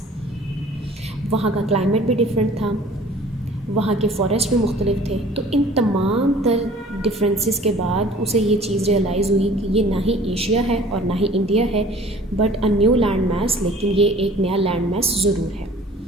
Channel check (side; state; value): both; normal; correlation 0.49